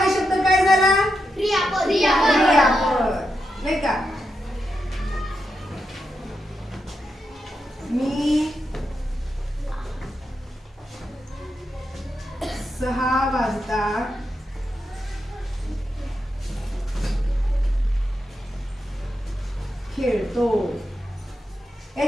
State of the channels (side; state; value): both; normal; correlation 0.86